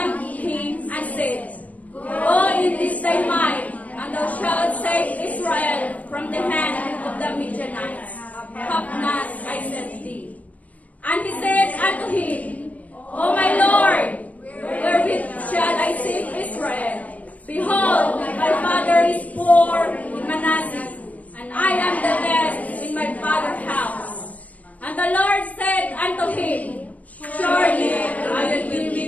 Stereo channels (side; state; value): right; late; 0.071 ms